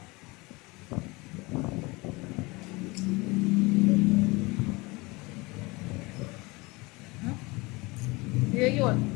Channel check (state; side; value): quieter; right; 24.2 dB